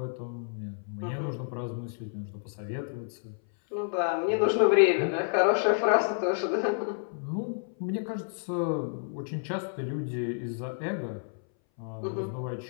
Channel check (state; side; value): silent; right; 58 dB below the other